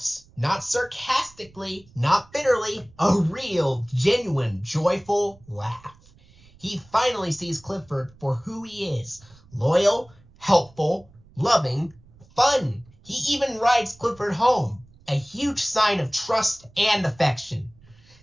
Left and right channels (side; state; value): right; noise; rumble, 27 dB below the sound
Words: Not sarcastically, not bitterly, a real, genuine, joyful laugh. He finally sees Clifford for who he is. Loyal, helpful, loving, fun. He even rides Clifford home. A huge sign of trust and affection.